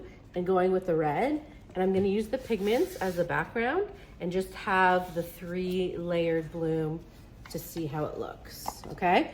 and going with the red, and I'm gonna use the pigments as the background and just have the 3 layered bloom to see how it looks, okay?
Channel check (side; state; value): both; identical; correlation 1.00